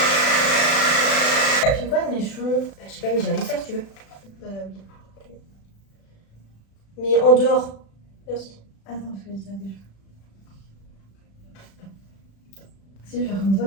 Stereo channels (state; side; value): late; right; 36 ms